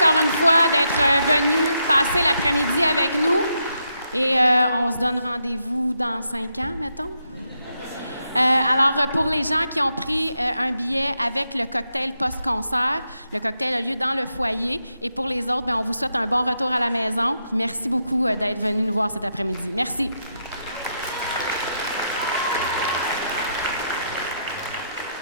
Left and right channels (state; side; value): inverted; both; correlation -0.81